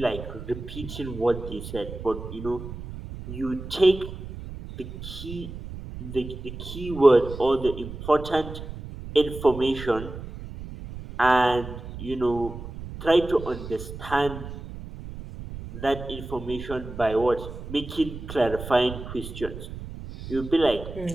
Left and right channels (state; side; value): noise; right; rumble, 10 dB below the sound